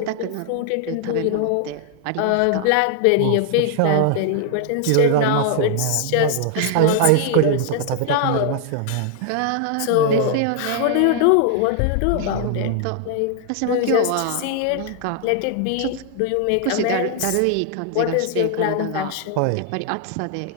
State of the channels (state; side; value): different; both; correlation 0.00